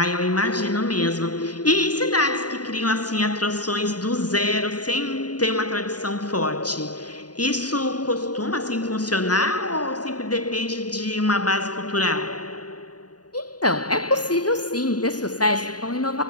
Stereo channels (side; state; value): right; late; 0.69 ms